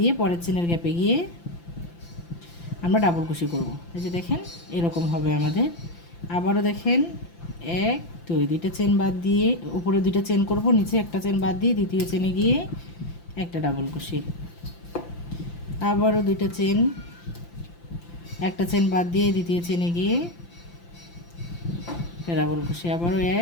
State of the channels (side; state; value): right; late; 5.9 ms